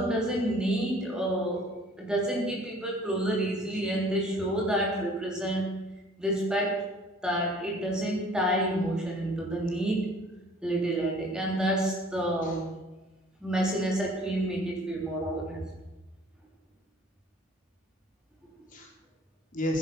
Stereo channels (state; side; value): normal; both; correlation 0.53